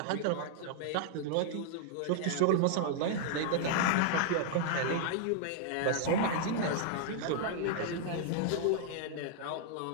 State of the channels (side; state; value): both; different; correlation -0.01